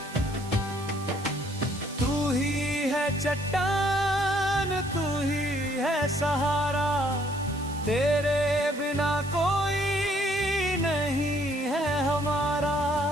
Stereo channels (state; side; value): noise; right; hiss, 17 dB below the sound